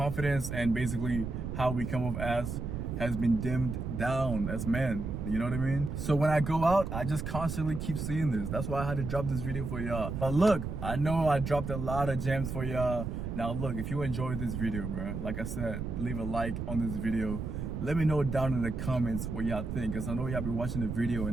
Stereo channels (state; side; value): noise; right; rumble, 4 dB below the sound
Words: and basically how we come off as has been dimmed down as men. You know what I mean? So when I go out, I just constantly keep seeing this. That's why I had to drop this video for y'all. But look, I know I dropped a lot of gems for y'all. Now look, if you enjoyed this video, bro, like I said, leave a like on this video. Let me know down in the comments what y'all think, because I know y'all be watching the video